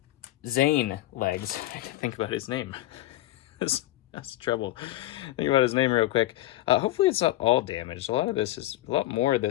Zane legs. I have to think about his name. That's trouble. Think about his name real quick. Hopefully it's not all damaged. A lot more of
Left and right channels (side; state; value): right; quieter; 15.7 dB